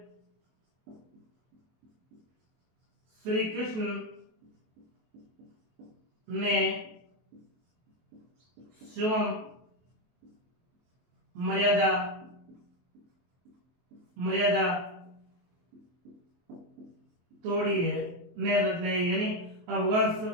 श्री कृष्ण ने स्वयं मर्यादा, मर्यादा तोड़ी है, ने नहीं, यानी अब भगवान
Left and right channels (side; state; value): left; late; 23 ms